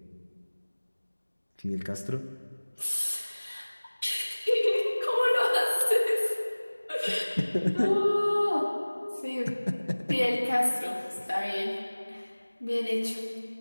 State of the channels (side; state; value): both; inverted; correlation -1.00